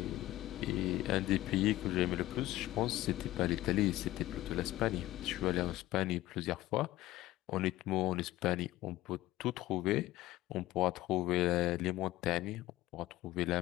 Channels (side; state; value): right; quieter; 16.5 dB